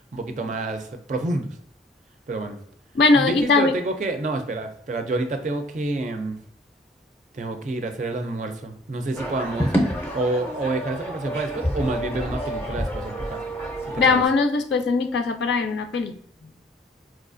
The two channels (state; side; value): normal; both; correlation 0.54